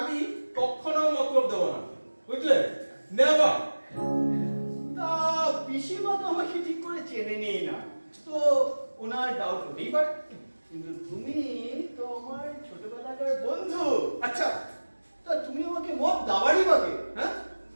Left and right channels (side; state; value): both; inverted; correlation -1.00